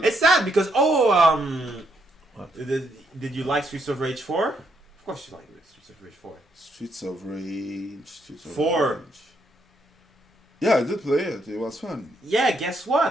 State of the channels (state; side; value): normal; both; correlation 0.75